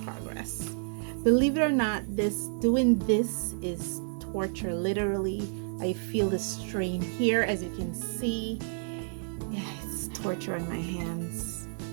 progress. Believe it or not, doing this is torture. Literally, I feel the strain here, as you can see. Yeah, it's torture on my hands,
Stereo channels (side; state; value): left; silent; digital silence